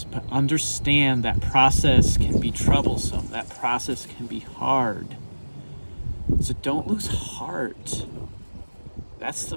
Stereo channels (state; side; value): inverted; both; correlation -1.00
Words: but understand that process can be troublesome, that process can be hard, so don't lose heart. That's the